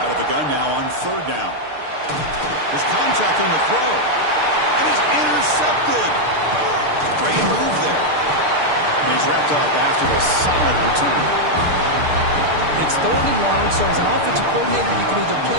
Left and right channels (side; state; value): left; late; 6.7 ms